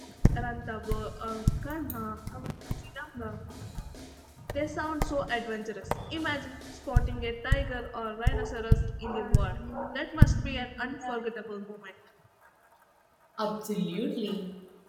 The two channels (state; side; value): identical; both; correlation 1.00